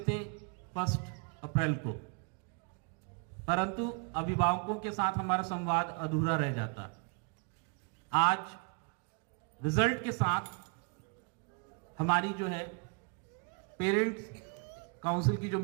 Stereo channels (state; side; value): quieter; left; 34.6 dB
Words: थे 1 अप्रैल को, परंतु अभिभावकों के साथ हमारा संवाद अधूरा रह जाता। आज रिजल्ट के साथ हमारी जो है पेरेंट्स काउंसिल की जो